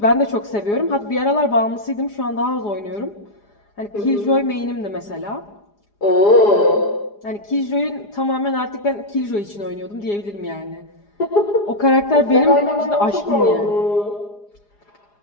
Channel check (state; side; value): late; right; 4.9 ms